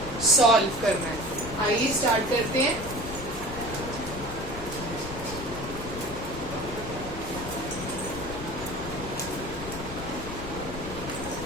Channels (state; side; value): noise; left; rumble, 10 dB below the sound